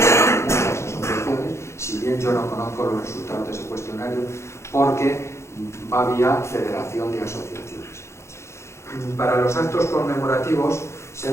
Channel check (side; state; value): right; late; 0.13 ms